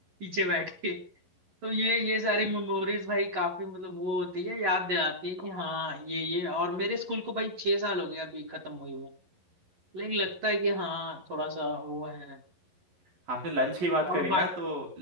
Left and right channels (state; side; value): late; left; 11 ms